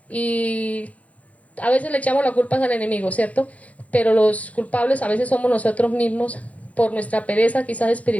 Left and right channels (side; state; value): right; late; 0.068 ms